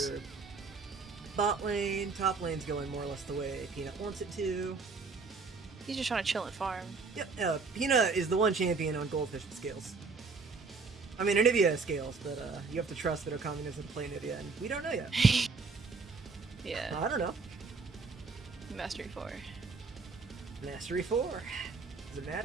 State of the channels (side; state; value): left; quieter; 4.4 dB